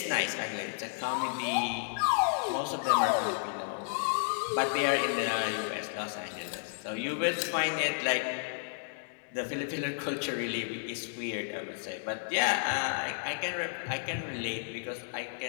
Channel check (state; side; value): silent; right; digital silence